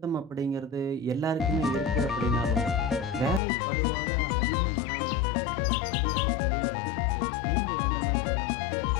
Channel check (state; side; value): drops out; right; at 3.4 s